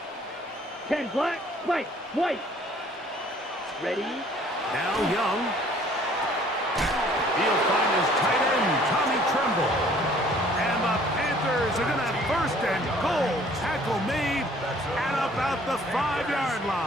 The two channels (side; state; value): both; normal; correlation 0.57